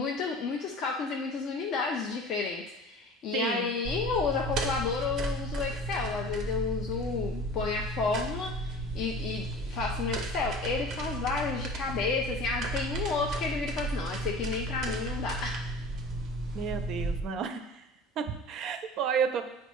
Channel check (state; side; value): normal; both; correlation 0.40